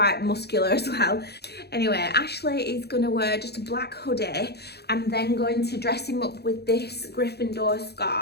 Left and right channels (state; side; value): late; right; 0.48 ms